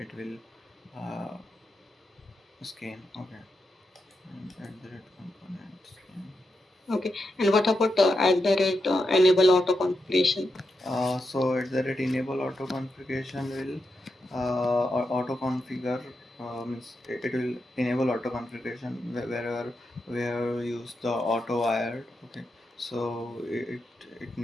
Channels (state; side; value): normal; both; correlation 0.86